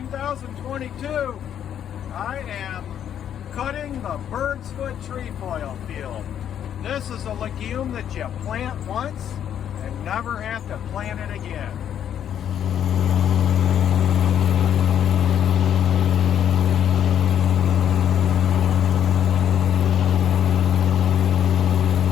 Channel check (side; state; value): right; quieter; 9.6 dB